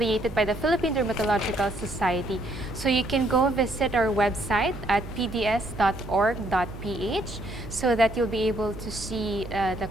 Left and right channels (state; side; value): noise; right; hum, 12 dB below the sound